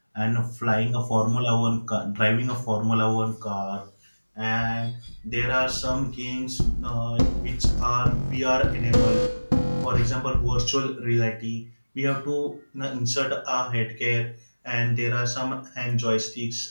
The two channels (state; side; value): inverted; both; correlation -1.00